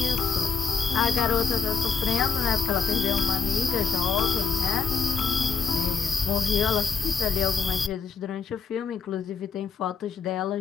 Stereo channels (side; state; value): right; quieter; 5.8 dB